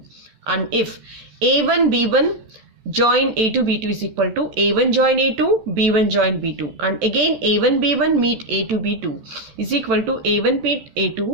And if A1 B1 join A2 B2 is equal to A1 join A2 B1 join B2, and again A1 B1 meet A2 B2 is equal to A1 meet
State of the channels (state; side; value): late; left; 14 ms